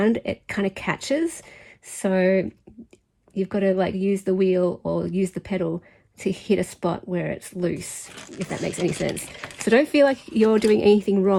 it kind of catches. So you've got to like use the wheel or use the pedal to hit a spot where it's loose, if that makes any sense. So don't feel like you're doing anything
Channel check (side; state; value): both; identical; correlation 1.00